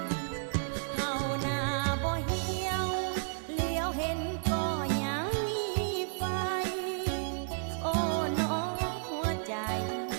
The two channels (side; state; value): left; silent; 56 dB below the other